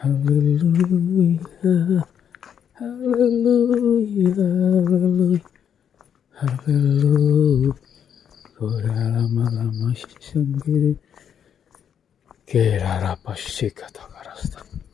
Hallelujah. Hallelujah. Hallelujah. Hallelujah. Kura lama-lama sendiri. Kira rapa shikata karasta.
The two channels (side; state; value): right; quieter; 8.4 dB